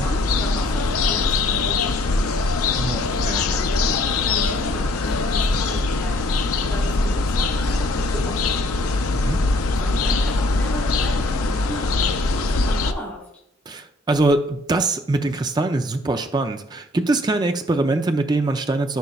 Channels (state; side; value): normal; both; correlation 0.60